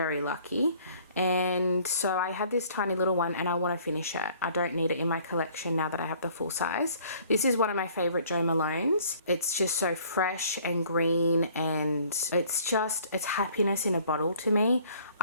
lucky. And so I had this tiny little one and I want to finish it. I don't need it in my collection now that I have the full size. This is one of my favorite Jo Malones. It's just so fresh and green, and it's happiness in a bottle to me.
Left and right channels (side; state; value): both; inverted; correlation -0.56